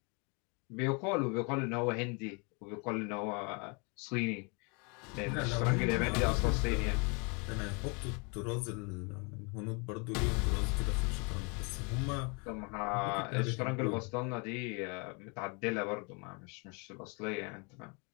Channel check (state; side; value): quieter; right; 32.8 dB